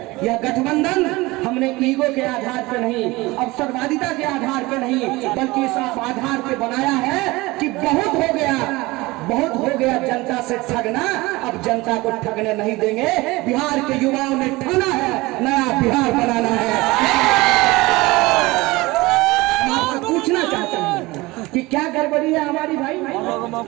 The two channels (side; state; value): left; quieter; 21.4 dB